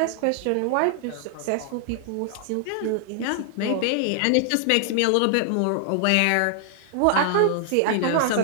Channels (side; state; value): both; different; correlation 0.00